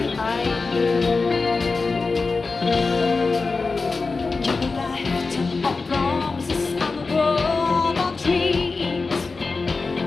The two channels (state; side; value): quieter; right; 4.1 dB